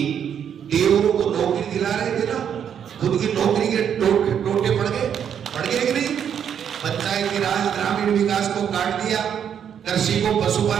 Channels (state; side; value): quieter; left; 8.5 dB